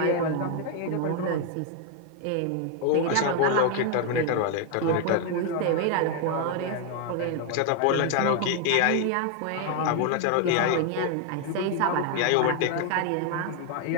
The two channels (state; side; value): different; both; correlation 0.01